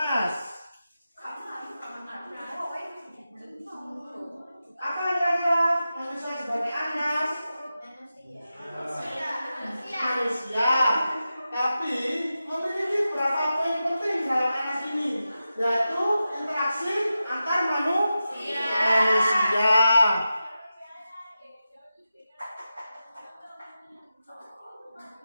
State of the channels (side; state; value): both; inverted; correlation -0.92